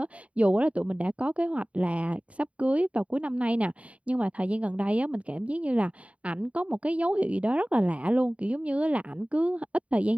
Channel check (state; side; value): late; left; 0.065 ms